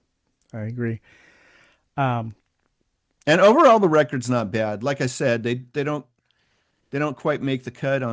I agree. Um, and overall, the record's not bad. Like I said, they don't quite make the cut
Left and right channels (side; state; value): both; identical; correlation 1.00